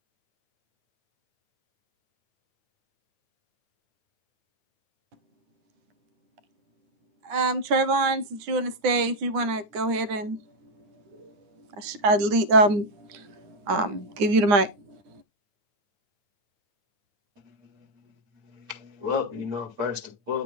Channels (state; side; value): late; left; 9.8 ms